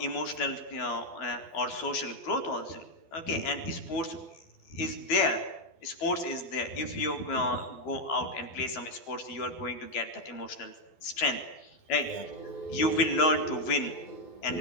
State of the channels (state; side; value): late; right; 12 ms